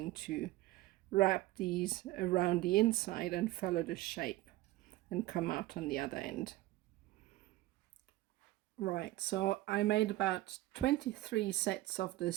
to wrap these around the inside and follow the shape and come out on the other end. Right, so I made about 23 sets of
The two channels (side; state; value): left; quieter; 17.5 dB